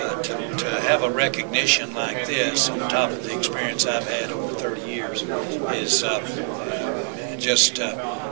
to have a recognition like this on top of the experience I've had over 30 years is just,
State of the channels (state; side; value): silent; left; 63 dB below the other